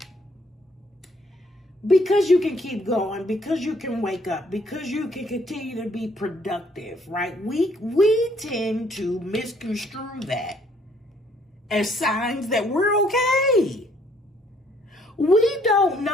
Because you can keep going, because you can wake up, because you can continue to be productive, right? We tend to misconstrue that as signs that we're okay. We don't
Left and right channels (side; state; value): both; normal; correlation 0.64